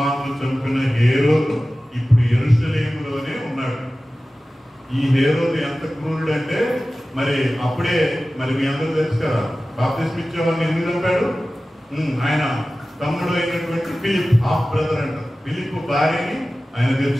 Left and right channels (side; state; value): both; normal; correlation 0.96